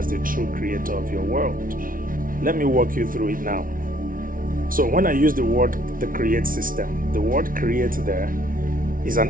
the true creator of your world. Let me walk you through it now. So when I use the word the Create System, the word create there is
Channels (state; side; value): late; left; 0.40 ms